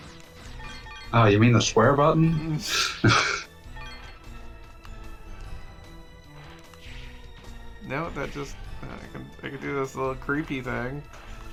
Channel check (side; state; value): both; identical; correlation 1.00